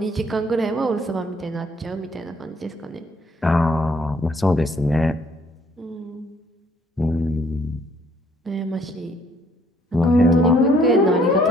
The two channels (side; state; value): both; normal; correlation 0.63